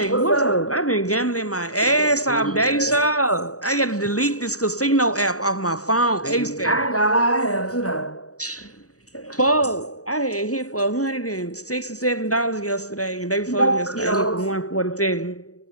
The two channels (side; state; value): right; late; 0.66 ms